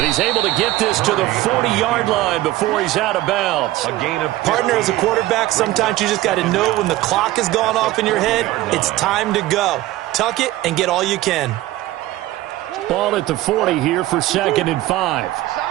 he's able to get this to the 40-yard line before he's out of bounds. Partner, as a quarterback, sometimes you just got to know when the clock has gone off in your head, it's time to go. Tuck it and get all you can. Ball at the 40 here for 2nd and 5.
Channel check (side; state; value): left; quieter; 16.3 dB